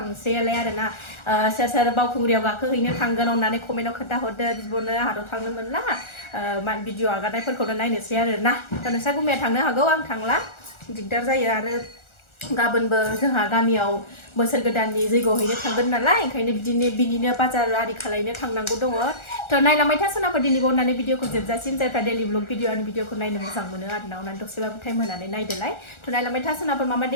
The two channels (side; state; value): right; late; 1.4 ms